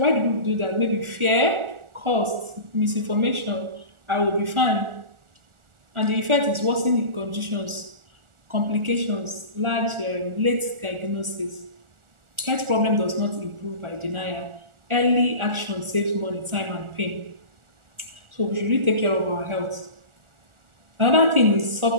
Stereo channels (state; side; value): late; left; 1.4 ms